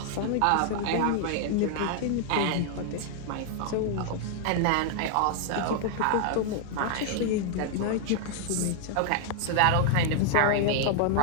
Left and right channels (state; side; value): different; both; correlation 0.00